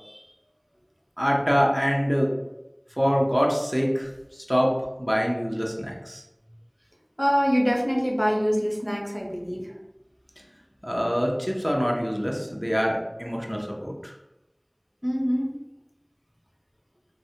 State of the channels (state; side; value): identical; both; correlation 1.00